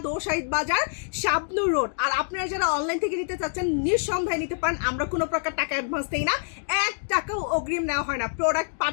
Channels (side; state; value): right; silent; digital silence